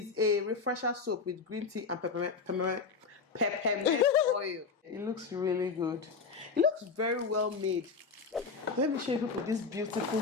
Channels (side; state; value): right; quieter; 4.9 dB